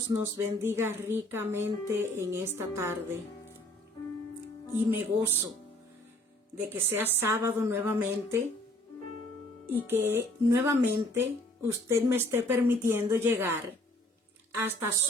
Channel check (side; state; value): both; normal; correlation 0.59